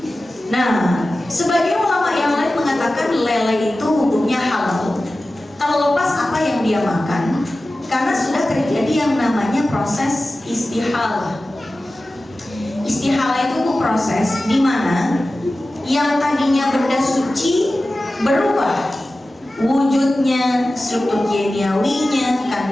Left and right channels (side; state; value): both; normal; correlation 0.95